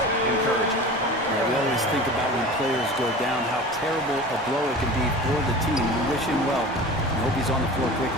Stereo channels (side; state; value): both; normal; correlation 0.36